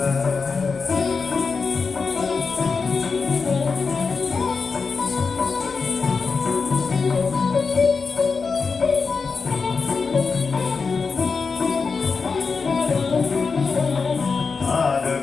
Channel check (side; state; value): right; quieter; 4.9 dB